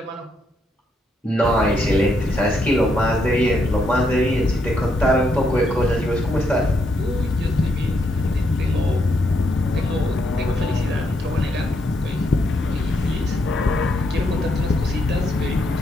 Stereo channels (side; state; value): both; normal; correlation 0.77